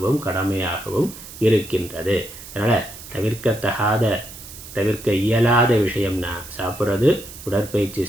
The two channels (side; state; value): right; noise; hiss, 15 dB below the sound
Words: கடமையாகவும் இருக்கின்றது. அதனால் தவிர்க்க இயலாத விஷயம்னா சாப்பிட்றது, உடற்பயிற்சி